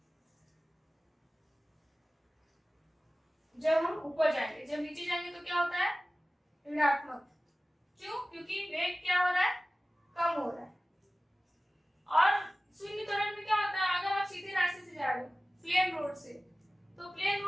जब हम ऊपर जाएंगे, जब नीचे जाएंगे तो क्या होता है, ऋणात्मक। क्यों, क्योंकि वेग क्या हो रहा है, कम हो रहा है। और शून्य त्वरण में क्या होता है, अगर आप सीधे रास्ते से जा रहे हो प्लेन रोड से, तो प्लेन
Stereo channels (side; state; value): both; normal; correlation 0.96